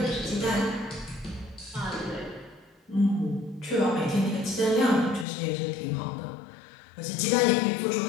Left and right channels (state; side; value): drops out; right; at 5.2 s